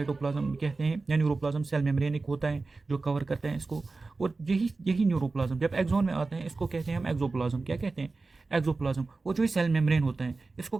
कहते हैं, या न्यूरोप्लाज्म सेल मेम्ब्रेन एक होता है जो कवर करते हैं इसको। और यही न्यूरोप्लाज्म जब एक्सोन में आते हैं, इसको कहते हैं हम एक्सोप्लाज्म। क्या कहते हैं? एक्सोप्लाज्म। और जो सेल मेम्ब्रेन होता है इसको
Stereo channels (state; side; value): quieter; left; 3.7 dB